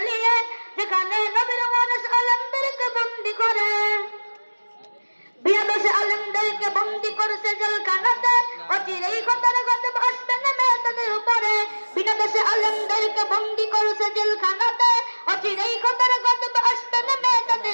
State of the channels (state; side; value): inverted; both; correlation -1.00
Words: যেখানে নবীর ওয়ারিস আলেমদেরকে বন্দী করে। বিয়াদশে আলেমদেরকে বন্দী করেছে জেলখানাতে, অচিরেই খোদার গজব আসবে নেমে তাদের উপরে। বিয়াদশে আলেমদেরকে বন্দী করেছে জেলখানাতে, অচিরেই খোদার গজব আসবে নেমে তাদের